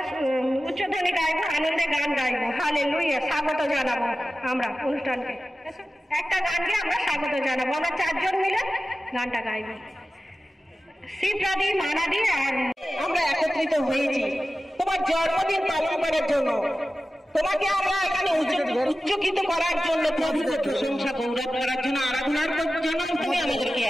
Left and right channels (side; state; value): both; normal; correlation 0.95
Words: উচ্চধ্বনি গাইবো, আনন্দে গান গাইবো। হালেলুয়া। স্বাগত জানাবো আমরা অনুষ্ঠানকে। একটা গান গিয়ে আমরা স্বাগত জানাবো। আমরা 4 জন মিলে গানটা গাইবো। শিবরাদি, মানাদি আর আমরা একত্রিত হয়েছি তোমার জন্মদিন পালন করার জন্য। তোমাকে আমরা এখানে উচ্চকিত করার জন্য, প্রভুর প্রশংসা গৌরব করার জন্য, আরাধনার জন্য তুমি আমাদেরকে